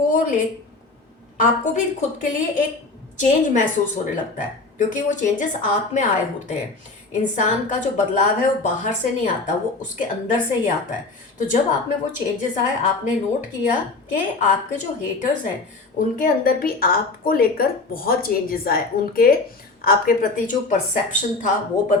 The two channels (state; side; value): quieter; right; 3.5 dB